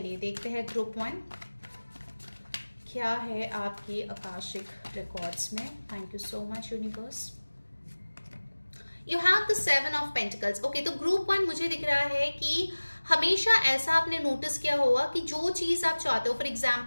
देखते हैं ग्रुप वन क्या है आपकी आकाशिक रिकॉर्ड्स में। Thank you so much universe. You have the 7 of pentacles. Okay, तो group one मुझे दिख रहा है कि हमेशा ऐसा आपने नोटिस किया होगा कि जो चीज आप चाहते हो, फॉर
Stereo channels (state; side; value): inverted; both; correlation -1.00